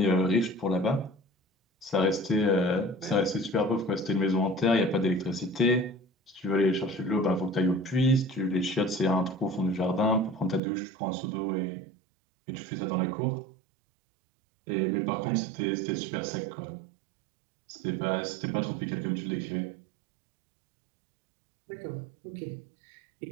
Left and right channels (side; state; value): left; drops out; at 10.6 s